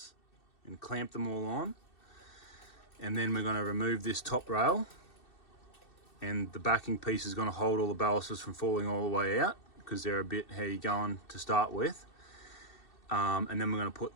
and clamp them all on, and then we're going to remove this top rail, and the backing piece is going to hold all the balusters from falling all the way out because they're a bit heavy going to start with. And then we're going to put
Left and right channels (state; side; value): late; right; 2.7 ms